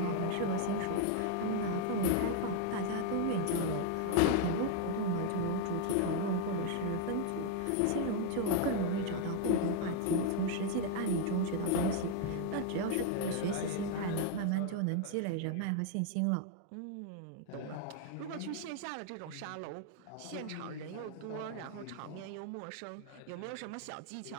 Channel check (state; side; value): different; both; correlation 0.00